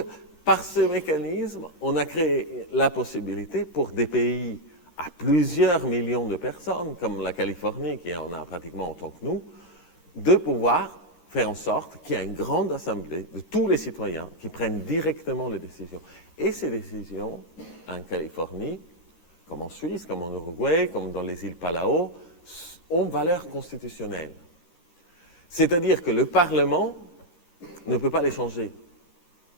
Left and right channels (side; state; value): right; late; 13 ms